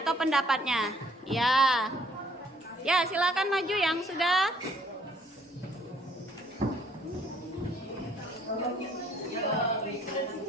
atau pendapatnya. Ya. Ya, silakan maju yang sudah.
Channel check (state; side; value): normal; both; correlation 0.63